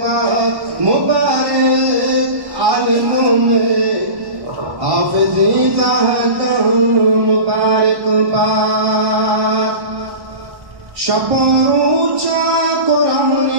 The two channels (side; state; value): left; late; 1.1 ms